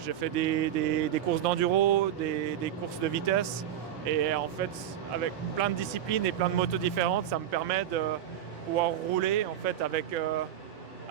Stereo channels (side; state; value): left; quieter; 10.7 dB